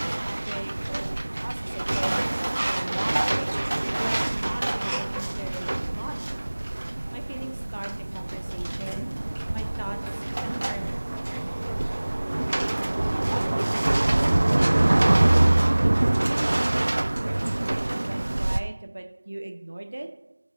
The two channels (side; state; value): both; inverted; correlation -1.00